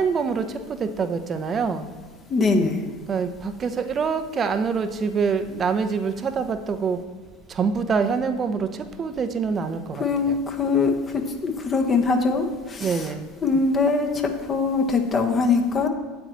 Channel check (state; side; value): normal; both; correlation 0.54